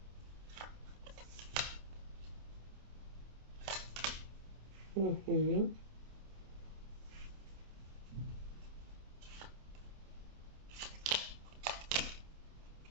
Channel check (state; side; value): late; left; 27 ms